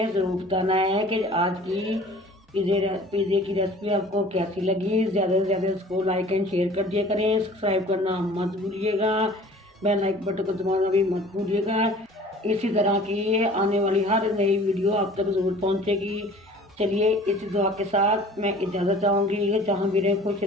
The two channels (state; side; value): normal; both; correlation 0.47